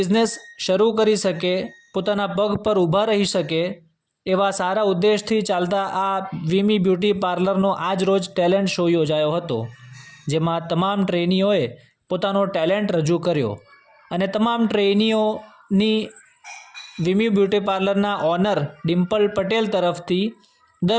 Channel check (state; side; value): identical; both; correlation 1.00